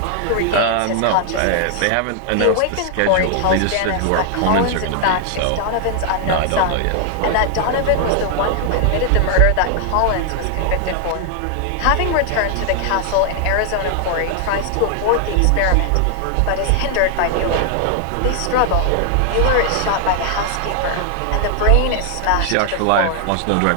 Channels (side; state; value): both; different; correlation 0.00